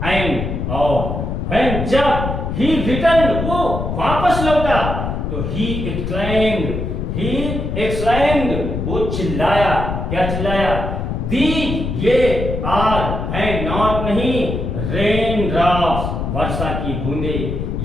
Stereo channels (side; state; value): left; noise; rumble, 3 dB below the sound